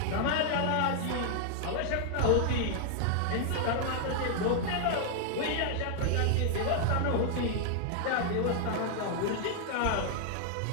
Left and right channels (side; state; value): both; different; correlation 0.00